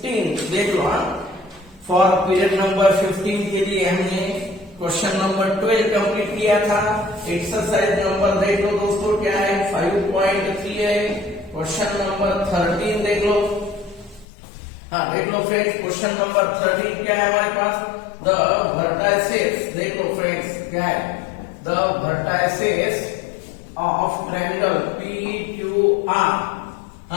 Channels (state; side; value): drops out; right; at 14.2 s